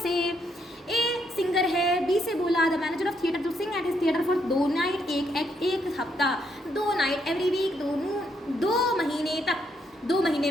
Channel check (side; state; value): both; normal; correlation 0.75